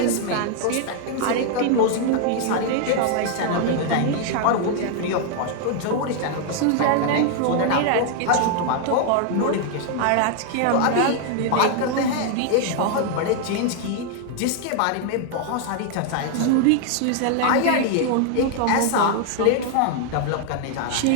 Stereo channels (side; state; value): both; different; correlation 0.00